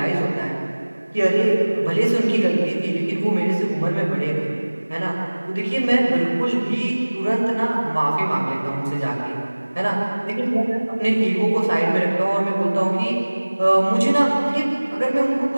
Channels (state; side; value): inverted; both; correlation -1.00